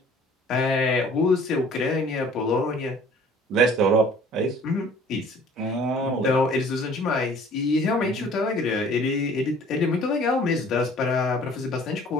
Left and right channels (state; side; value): normal; both; correlation 0.52